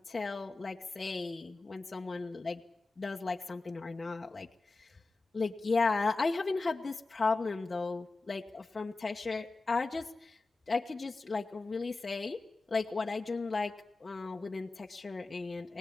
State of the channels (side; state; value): right; quieter; 3.5 dB